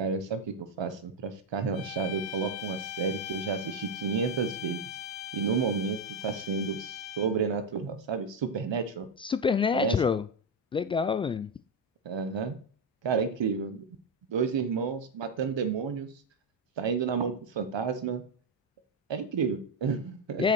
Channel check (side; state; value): both; normal; correlation 0.07